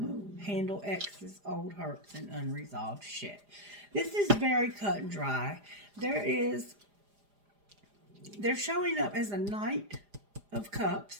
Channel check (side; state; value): left; late; 4.9 ms